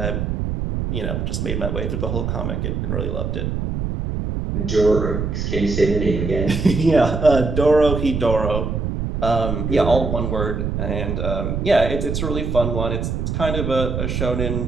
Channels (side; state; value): right; noise; rumble, 2 dB below the sound